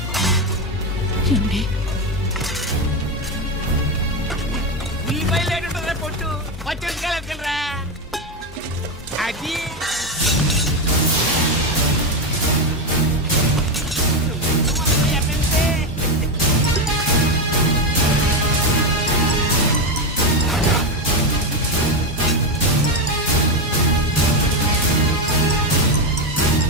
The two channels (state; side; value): normal; both; correlation 0.10